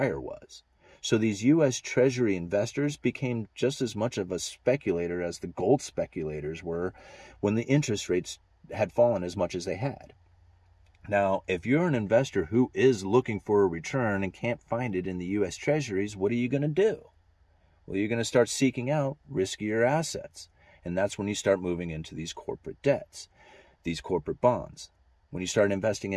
was. So these U.S. Treasury investors became just as much of a speculator as the gold speculators were when the interest rates had fallen as much as they had. Now, if you're an investor who is looking for a return and can't find it in the U.S. Treasuries, what are you going to do? Well, you're going to start seeking out riskier assets. And that's when you start moving into these corporate debts, these corporate bonds. When you start investing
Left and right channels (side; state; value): both; identical; correlation 1.00